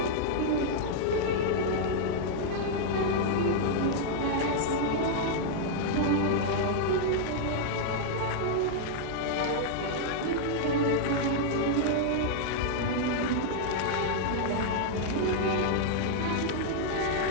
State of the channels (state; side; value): different; both; correlation -0.01